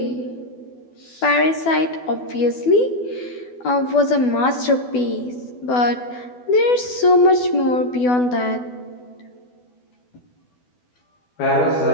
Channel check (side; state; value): right; late; 12 ms